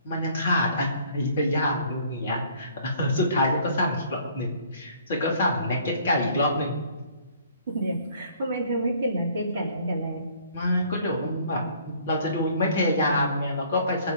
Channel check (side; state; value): both; inverted; correlation -0.58